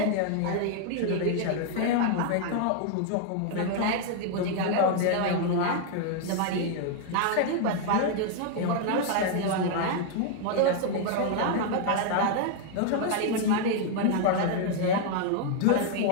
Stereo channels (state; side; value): different; both; correlation 0.00